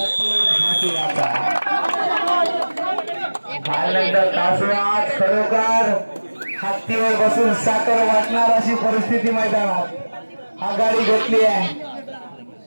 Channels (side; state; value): both; inverted; correlation -1.00